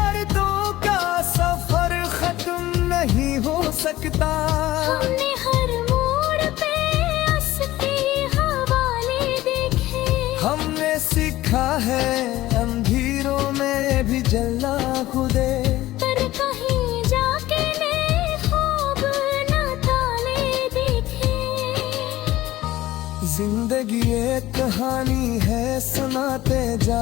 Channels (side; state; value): right; quieter; 16.1 dB